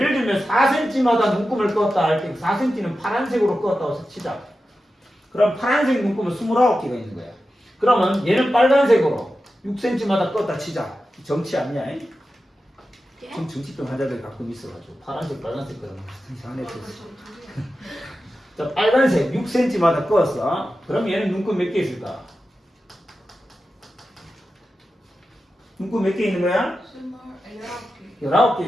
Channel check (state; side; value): normal; both; correlation 0.92